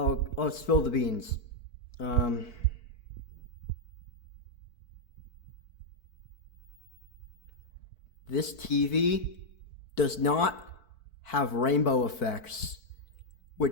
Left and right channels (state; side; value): late; right; 4.5 ms